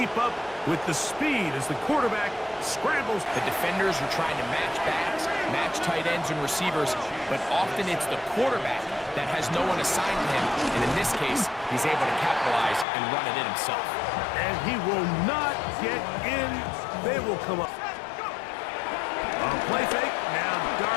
up with the speed as the quarterback scrambles. The defenders are trying to match backs, match tight ends and receivers, but often it's the quarterback that has no one assigned to him. And in this case, he's able to capitalize and run it in himself. And he will not get in. They will come up. Play fake, now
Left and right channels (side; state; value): right; drops out; at 12.9 s